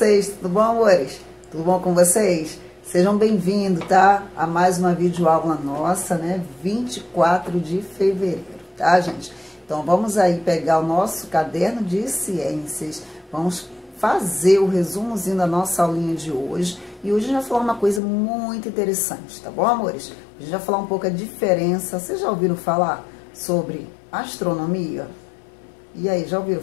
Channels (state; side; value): drops out; right; at 18.0 s